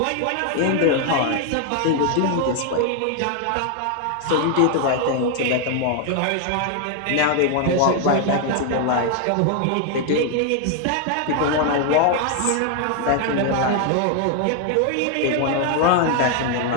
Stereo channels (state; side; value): different; both; correlation 0.00